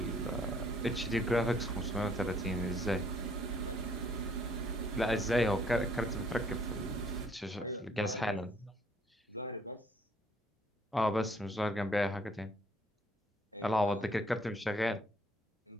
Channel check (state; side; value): normal; both; correlation 0.63